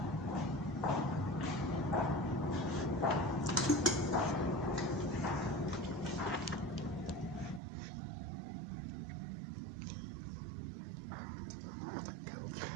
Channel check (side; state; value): left; drops out; at 7.6 s